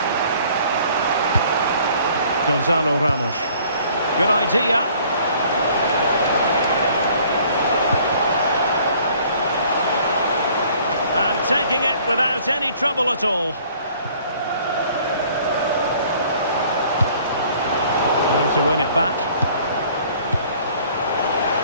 Gonzalo Ramos. Good idea. And taking it without any trouble at all. There to win it back.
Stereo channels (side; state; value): both; inverted; correlation -0.56